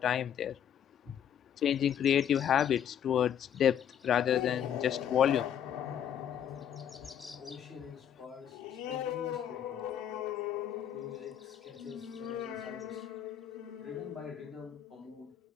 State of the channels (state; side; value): quieter; right; 9.4 dB